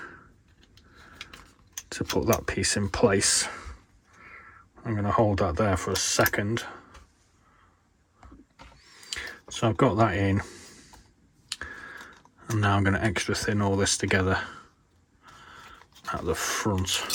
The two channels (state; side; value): identical; both; correlation 1.00